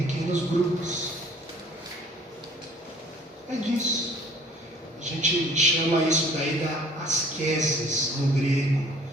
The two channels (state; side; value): normal; both; correlation 0.53